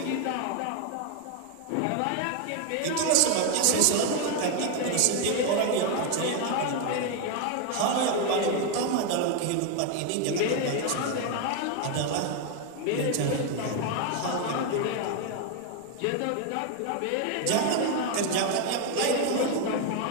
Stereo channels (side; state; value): both; different; correlation 0.01